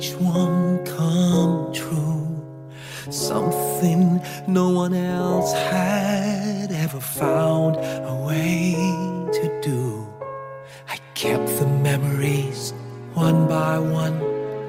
one come true. Something no one else had ever found a way to do. I kept the memories one by one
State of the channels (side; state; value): both; identical; correlation 1.00